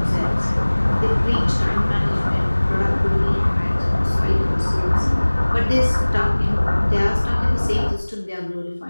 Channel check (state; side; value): inverted; both; correlation -1.00